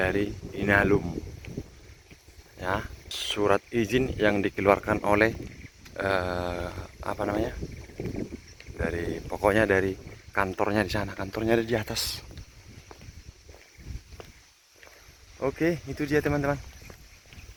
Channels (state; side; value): identical; both; correlation 1.00